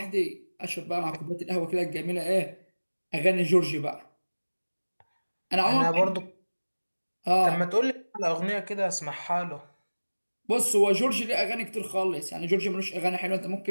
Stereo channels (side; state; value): both; inverted; correlation -1.00